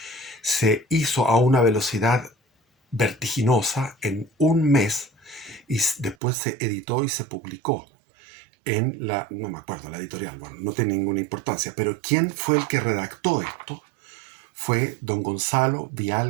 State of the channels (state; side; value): drops out; left; at 6.2 s